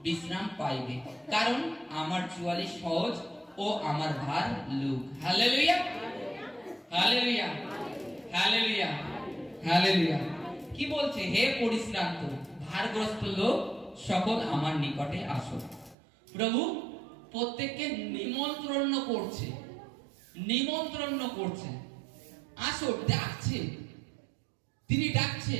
বিশ্রাম পাইবে, কারণ আমার জোয়ালি সহজ ও আমার ভার লঘু। Hallelujah, hallelujah, hallelujah, hallelujah. কি বলছে? হে পরিশ্রান্ত ভারগ্রস্ত লোক সকল, আমার নিকটে আসো। প্রভু প্রত্যেককে নিমন্ত্রণ করছে, নিমন্ত্রণ করছে, আসো, ডাকছে। তিনি ডাকছে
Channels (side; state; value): left; drops out; at 16.0 s